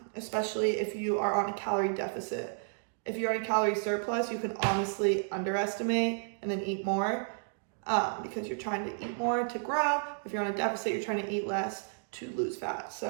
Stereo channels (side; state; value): left; silent; digital silence